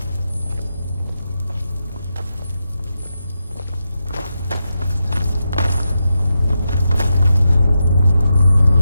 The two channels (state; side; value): inverted; both; correlation -0.87